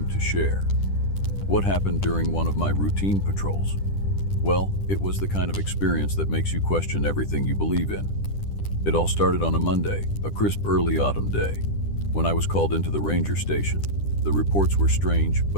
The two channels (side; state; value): right; late; 10 ms